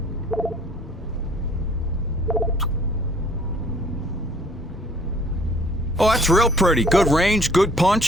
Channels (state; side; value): normal; both; correlation 0.56